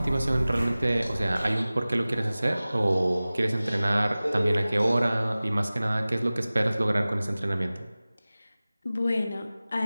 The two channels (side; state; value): both; inverted; correlation -0.98